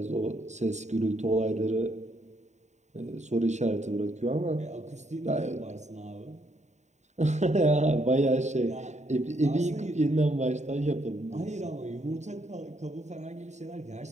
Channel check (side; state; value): left; late; 0.34 ms